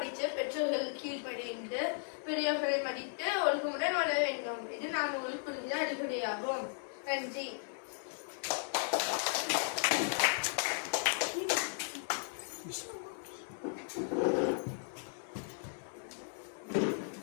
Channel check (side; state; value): right; silent; 54 dB below the other